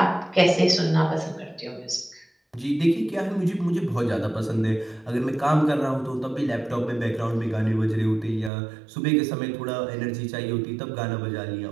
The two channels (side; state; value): left; drops out; at 8.5 s